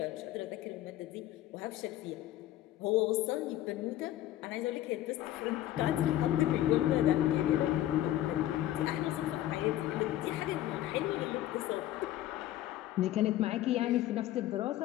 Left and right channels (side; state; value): right; quieter; 13.7 dB